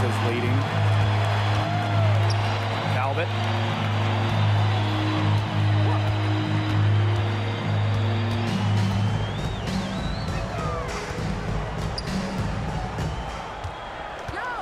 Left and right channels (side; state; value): both; identical; correlation 1.00